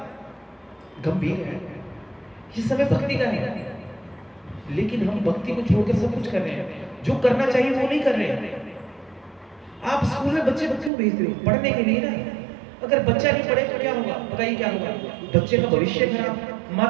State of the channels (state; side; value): drops out; left; at 10.9 s